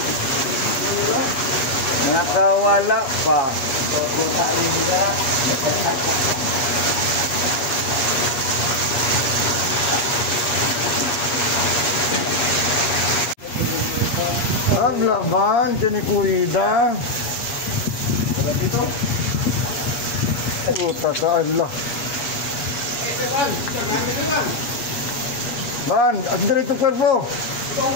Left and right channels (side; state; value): right; late; 8.4 ms